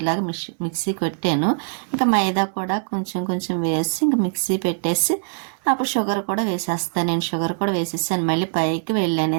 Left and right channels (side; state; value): left; silent; digital silence